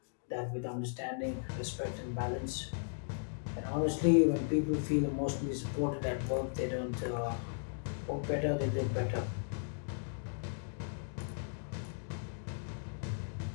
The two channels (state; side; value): silent; right; digital silence